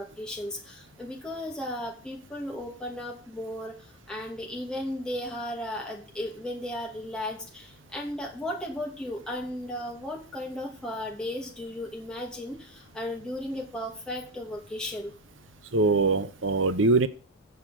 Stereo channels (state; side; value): normal; both; correlation 0.16